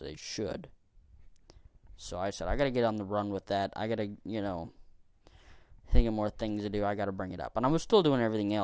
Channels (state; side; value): identical; both; correlation 1.00